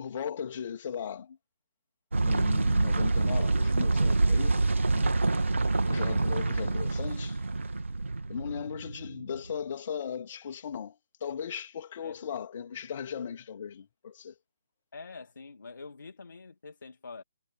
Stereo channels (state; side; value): inverted; both; correlation -0.92